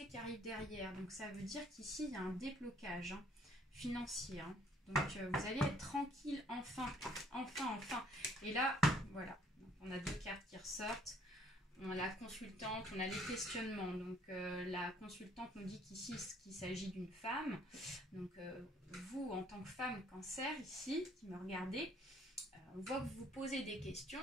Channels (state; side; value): normal; both; correlation 0.62